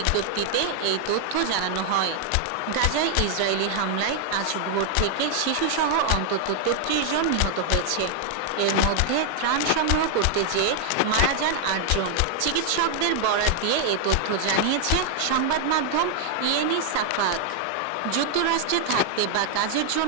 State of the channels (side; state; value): both; different; correlation 0.00